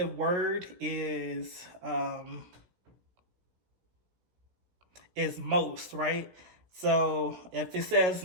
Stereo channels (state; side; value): late; left; 17 ms